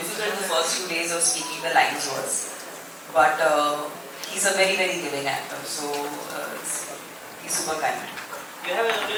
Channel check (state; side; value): identical; both; correlation 1.00